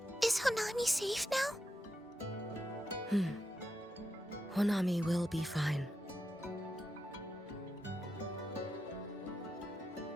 is Honami safe now? Honami will be fine.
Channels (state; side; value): normal; both; correlation 0.86